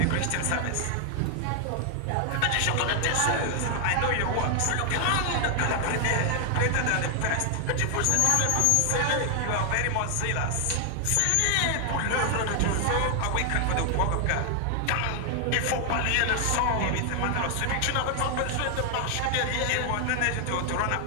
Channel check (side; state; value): both; different; correlation 0.00